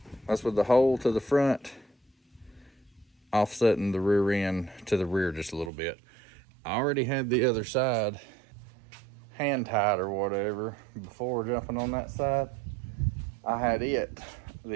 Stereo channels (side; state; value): left; drops out; at 5.7 s